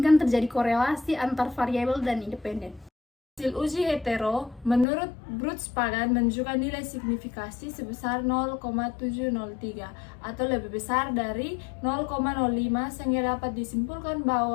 terjadi korelasi antar variabel dan independen. Hasil uji hetero menurut Brooks-Pagan menunjukkan nilai signifikasi sebesar 0,703 atau lebih besar dari 0,05 sehingga dapat disimpulkan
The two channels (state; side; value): drops out; right; at 4.9 s